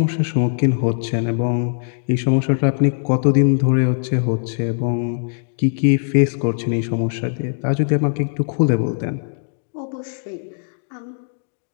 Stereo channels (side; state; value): right; silent; 66 dB below the other